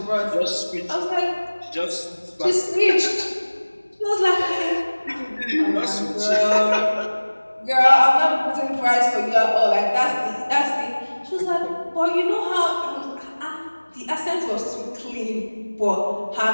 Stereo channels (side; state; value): both; inverted; correlation -1.00